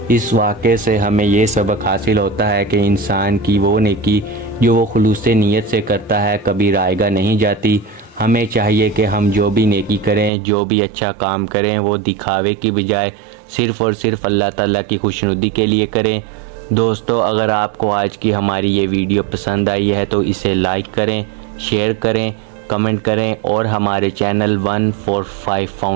اس واقعے سے ہمیں یہ سبق حاصل ہوتا ہے کہ انسان کی وہ نیکی جو وہ خلوص نیت سے کرتا ہے کبھی رائے گاہ نہیں جاتی۔ ہمیں چاہیے کہ ہم جو بھی نیکی کریں، جو بھی اچھا کام کریں، وہ دکھاوے کی بجائے صرف اور صرف اللہ تعالیٰ کی خوشنودی کے لیے کریں۔ دوستو اگر آپ کو آج کی ہماری یہ ویڈیو پسند آئی ہے تو اسے لائک کریں، شیئر کریں، کمنٹ کریں اور ہمارے چینل 145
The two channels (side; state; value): left; drops out; at 10.3 s